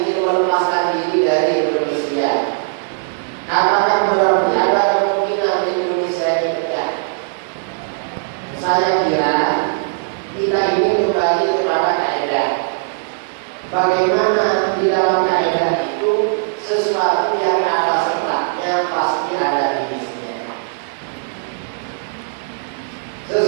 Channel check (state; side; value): silent; left; digital silence